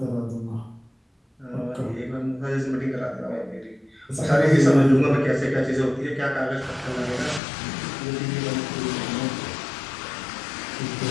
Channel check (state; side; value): drops out; right; at 7.4 s